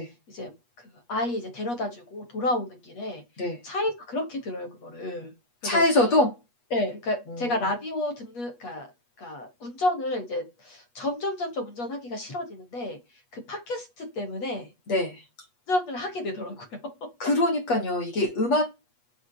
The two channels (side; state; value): right; late; 8.3 ms